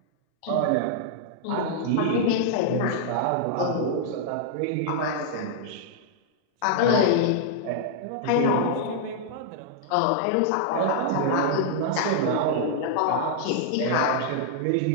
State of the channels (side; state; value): both; different; correlation -0.01